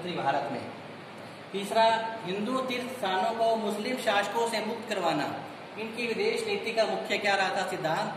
भारत में। तीसरा हिंदू तीर्थ स्थानों को मुस्लिम शासकों से मुक्त करवाना। इनकी विदेश नीति का मुख्य क्या रहा था,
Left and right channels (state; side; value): identical; both; correlation 1.00